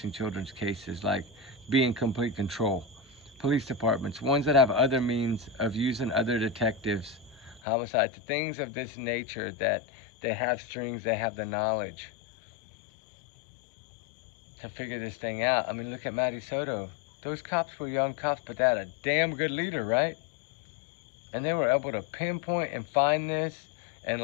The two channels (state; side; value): drops out; right; at 7.6 s